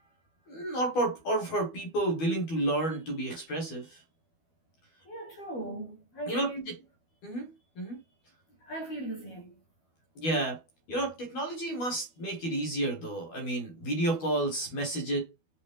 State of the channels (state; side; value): late; right; 12 ms